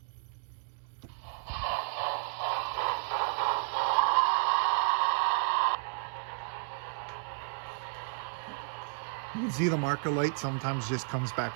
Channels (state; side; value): silent; left; 56 dB below the other